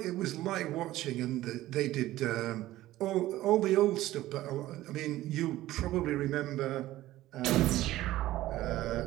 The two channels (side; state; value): left; quieter; 15.6 dB